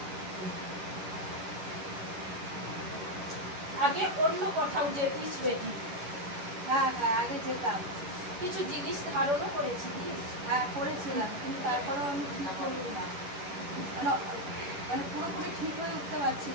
আগে অন্য কোথাও যেতিস বেটি? হ্যাঁ হ্যাঁ, আগে যেতাম। কিছু জিনিস ধারণও করেছিলিস? হ্যাঁ করেছিলাম, কিন্তু তারপরেও আমি ঠিক করি না, মানে মানে পুরোপুরি ঠিক হয়ে উঠতে পারছি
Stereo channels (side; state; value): left; late; 11 ms